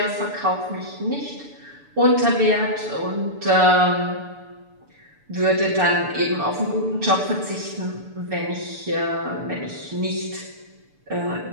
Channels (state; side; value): late; left; 6.9 ms